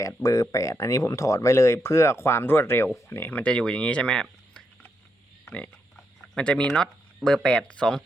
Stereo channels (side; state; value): both; normal; correlation 0.81